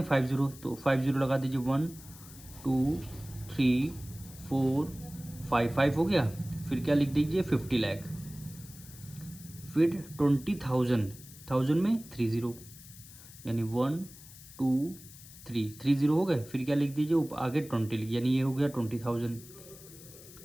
5 जीरो, तो 5 जीरो लगा दीजिए, 1 2 3 4 5 हो गया। फिर क्या लिख दीजिए, 50 लाख। फिर 20,000, 1000 में 3 जीरो, यानी 1 2 3 जीरो हो गए। फिर क्या लिख दीजिए, आगे 20 लिख, यानी ये हो गया 20,000।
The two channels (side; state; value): left; noise; hiss, 18 dB below the sound